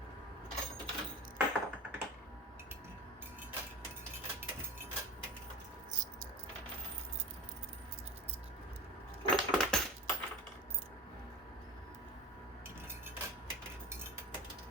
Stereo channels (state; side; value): normal; both; correlation 0.34